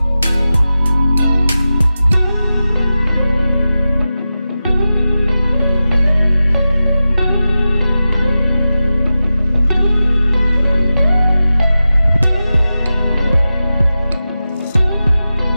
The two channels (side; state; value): both; inverted; correlation -0.93